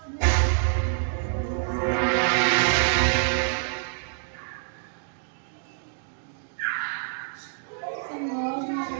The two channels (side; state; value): left; silent; digital silence